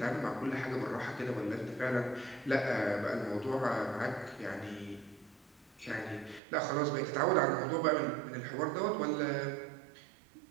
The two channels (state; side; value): drops out; left; at 6.4 s